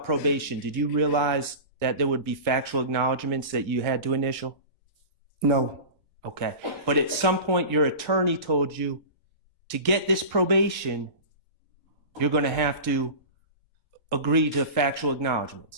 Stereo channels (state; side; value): inverted; both; correlation -0.32